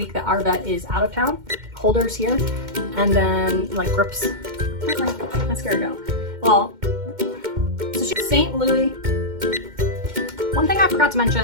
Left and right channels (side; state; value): left; late; 2.1 ms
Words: that our vet is out of town. Holders here, and then like grips. Where's my mascara go? Well, so she's St. Louis. One thing I forgot to